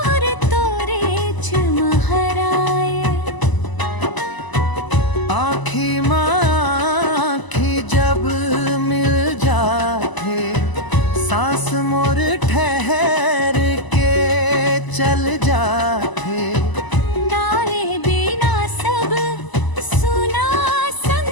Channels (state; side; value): late; right; 1.0 ms